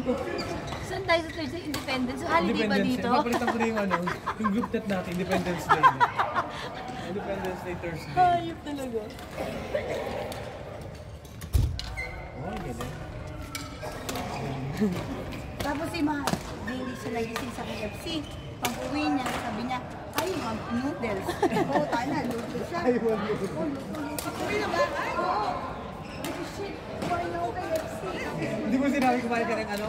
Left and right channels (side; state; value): both; identical; correlation 1.00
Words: ko, saan tayo sa Thursday Independence? So, holiday ba dito? Mapalitan ko na yung ano, yung group chat natin, Independence Day. Independence Day Thursday. Hayop talaga. Oh, ganyan. Tapos si Mahal, hindi siya nagising sa KFC. Pag-uwi niya, sabi niya, ay, mag noodles. Oo, tayo na, noodles siya. Ay, wag mo. Uwi na ba? Ay, oo. Ay, shit, kumain ako KFC. Hindi mo sinabi kumain ka ng